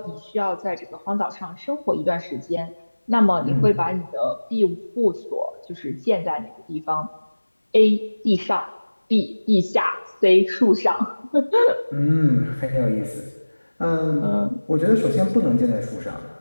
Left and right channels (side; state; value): both; inverted; correlation -1.00